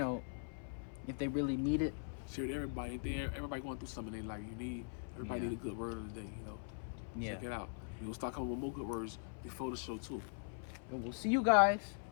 really need it. Share it to everybody. Everybody going through something they like. Everybody need a good word of the day. Yeah. Check it out. We gonna start coming with more good words before the show too. And we'll see you guys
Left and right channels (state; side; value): silent; right; 50 dB below the other